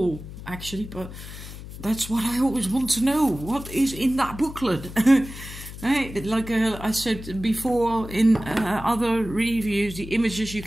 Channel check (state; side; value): noise; left; hum, 12 dB below the sound